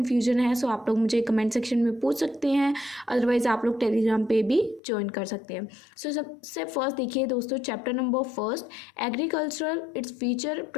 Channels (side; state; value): right; drops out; at 4.8 s